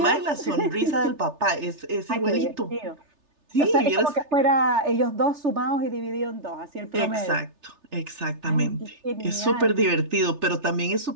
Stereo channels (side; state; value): left; late; 3.3 ms